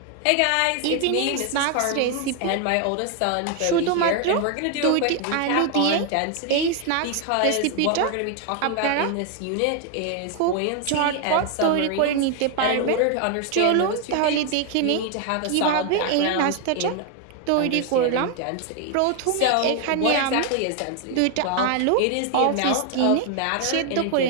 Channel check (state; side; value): different; both; correlation 0.01